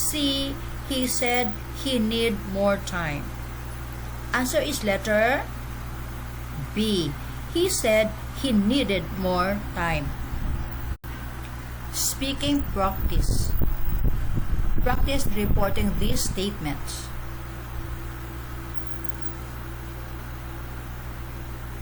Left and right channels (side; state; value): both; identical; correlation 1.00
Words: He said he need more time. Answer is letter B. He said he needed more time. Speaking practice. Practice reporting these statements.